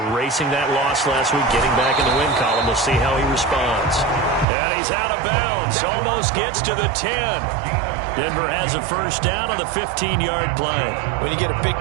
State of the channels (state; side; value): drops out; left; at 4.5 s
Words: that loss last week, getting back in the win column. We'll see how he responds. And he's out of bounds. Almost gets to the 10. Denver has a 1st down on the 15-yard play. When you get a big